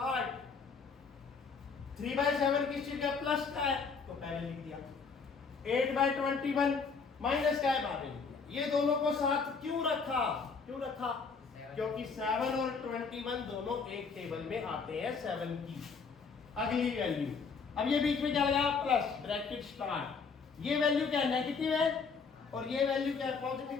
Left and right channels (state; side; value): quieter; right; 5.2 dB